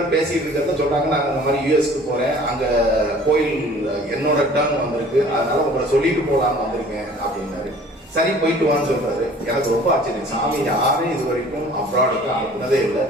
பேசிட்டு இருக்கிறத சொல்றாங்க, நாங்க இந்த மாதிரி யூஎஸ்க்கு போறேன், அங்க கோயில் என்னோட டர்ன் வந்திருக்கு, அதனால உங்களை சொல்லிட்டு போலான்னு வந்திருக்கேன் அப்படின்னாரு. சரி, போயிட்டு வான்னு சொல்றாரு. எனக்கு ரொம்ப ஆச்சரியம். சாமி யாரும் இது வரைக்கும் அப்ராடுக்கு அனுப்புனதே இல்லை.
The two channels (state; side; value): normal; both; correlation 0.49